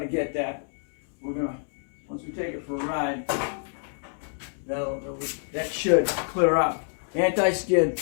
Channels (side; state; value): right; silent; 60 dB below the other